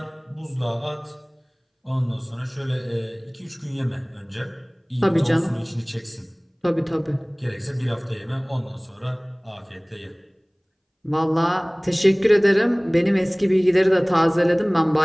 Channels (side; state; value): both; identical; correlation 1.00